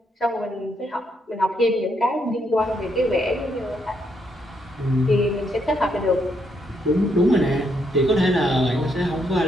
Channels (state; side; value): normal; both; correlation 0.76